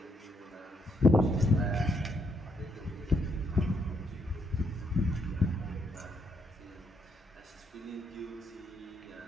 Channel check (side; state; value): both; normal; correlation 0.75